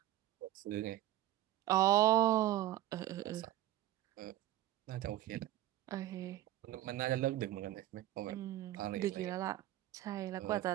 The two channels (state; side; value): quieter; left; 14.6 dB